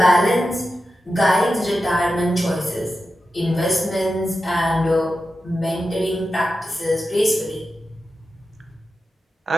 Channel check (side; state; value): both; normal; correlation 0.91